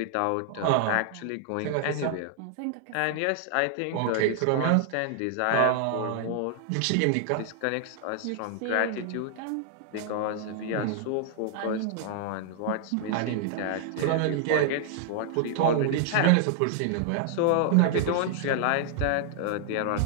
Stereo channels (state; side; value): different; both; correlation 0.00